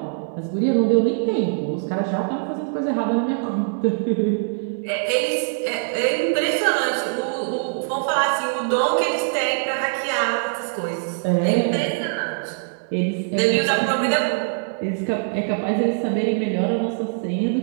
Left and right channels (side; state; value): left; silent; digital silence